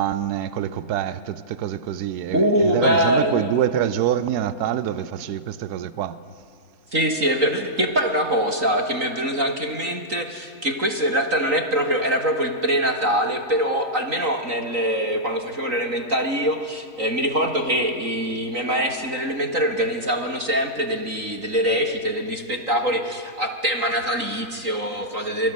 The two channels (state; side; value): late; left; 3.9 ms